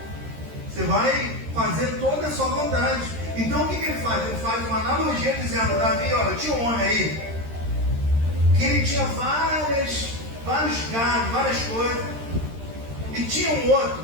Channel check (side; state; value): left; late; 13 ms